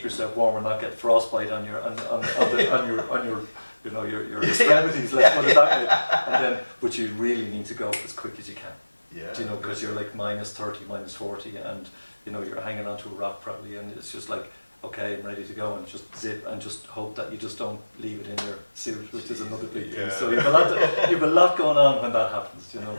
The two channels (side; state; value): both; inverted; correlation -1.00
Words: yourself warm and not get frostbite on your you know, your extremities. Let's put it that way. And then, but you really need to go as quick as you can. Yeah. Do you know, because you're like -30, -40, and you know you're hanging onto a rock probably, and it's just like, okay, I'm ready to go, and just zip and just hope that you just don't leave it in your suit, which is another big thing. So you've a lot going on when that happens. You know,